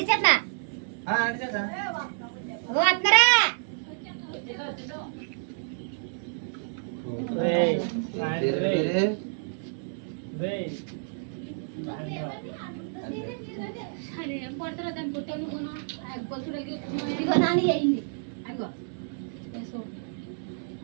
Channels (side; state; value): left; silent; 59 dB below the other